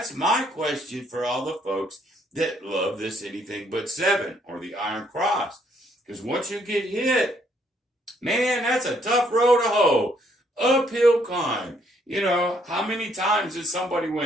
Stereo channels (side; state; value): both; normal; correlation 0.69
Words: my question for all the folks that love this anything but 7 or the Iron Cross. Because once you get hit, man, that's a tough road to hoe. Uphill climb. You know, how many times did somebody